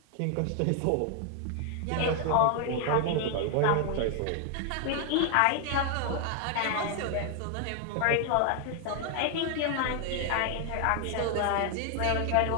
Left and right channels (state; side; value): different; both; correlation 0.00